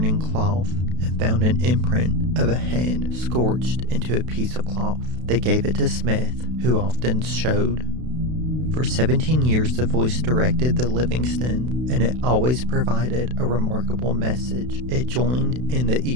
cloth and found an imprint of a hand scorched into a piece of cloth. They gave it to Smith, who often showed. For 17 years, the voice directed the Livingston, and it always provided a remarkable message. It joined in the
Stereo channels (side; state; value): left; late; 32 ms